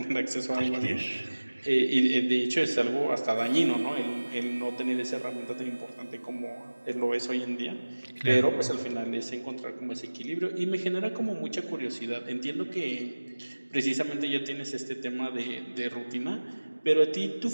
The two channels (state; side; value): inverted; both; correlation -1.00